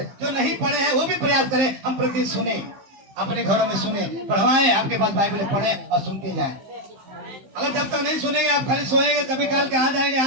जो नहीं पढ़े हैं वो भी प्रयास करें, हम प्रतिदिन सुने, अपने घरों में सुने, पढ़वाएं, आपके पास बाइबल पढ़े और सुनते जाएं। अगर जब तक नहीं सुनेंगे, आप खाली सोएंगे, कभी काल के आ जाएंगे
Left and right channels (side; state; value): left; late; 15 ms